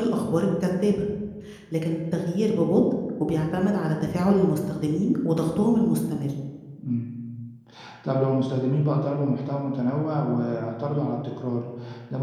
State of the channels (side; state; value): both; identical; correlation 1.00